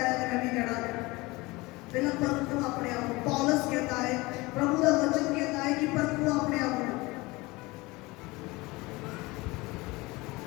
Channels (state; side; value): quieter; right; 22.6 dB